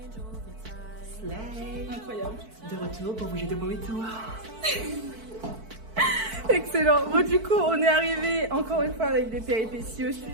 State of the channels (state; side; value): late; left; 4.5 ms